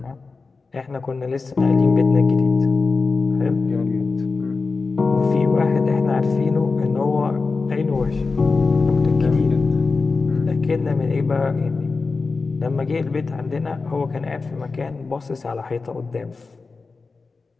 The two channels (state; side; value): quieter; right; 4.2 dB